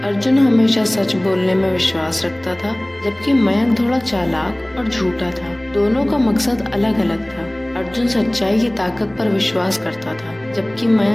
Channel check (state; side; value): noise; right; rumble, 28 dB below the sound